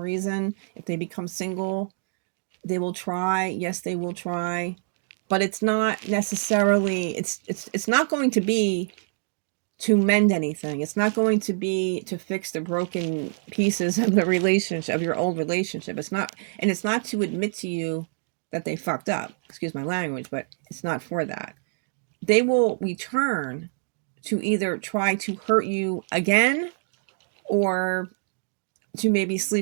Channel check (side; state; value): left; silent; digital silence